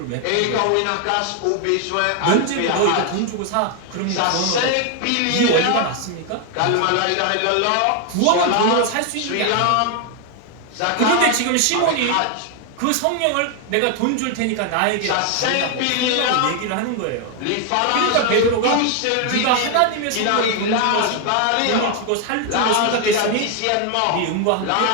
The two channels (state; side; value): different; both; correlation 0.01